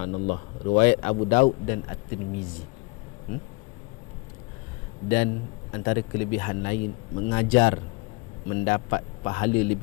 Riwayat Abu Daud dan At-Tirmizi. Dan antara kelebihan lain, mengajar mendapat pahala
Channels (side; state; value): right; quieter; 27.5 dB